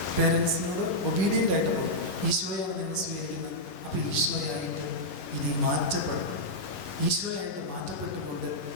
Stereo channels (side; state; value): right; late; 11 ms